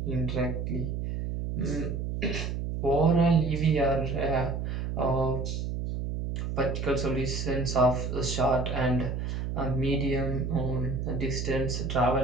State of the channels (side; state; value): right; noise; hum, 3 dB below the sound